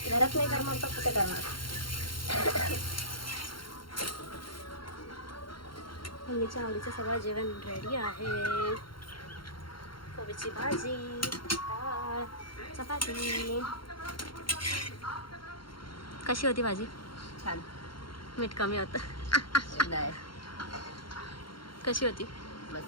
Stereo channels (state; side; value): late; right; 0.73 ms